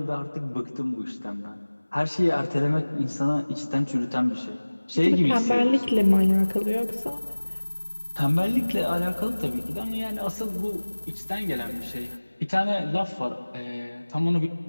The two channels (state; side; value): inverted; both; correlation -1.00